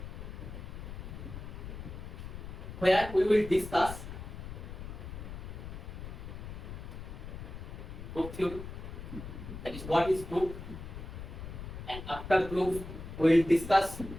Where we will discuss group theory, that is what is group, and after group we will discuss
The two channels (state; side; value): noise; left; rumble, 9 dB below the sound